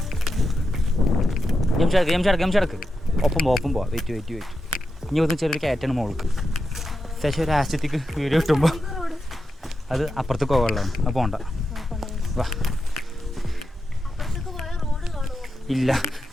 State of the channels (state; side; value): normal; both; correlation 0.88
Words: ഗംഷടക്ക് ഒപ്പം പോവാ വെയിറ്റ് ഇനി ഒന്ന് ചെറിയൊരു കയറ്റാണ് മോൾക്ക് ശേഷം ഒരു ആശയത്തേക്ക് വീഡിയോ കിട്ടുമ്പോൾ അത് അപ്പുറത്തേക്ക് പോകാനുള്ളതാണ് അത് പോകണ്ട വാ ഇല്ല